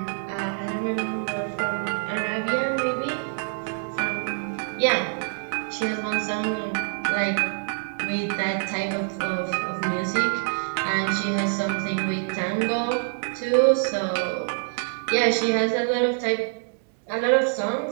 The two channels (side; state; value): left; silent; 61 dB below the other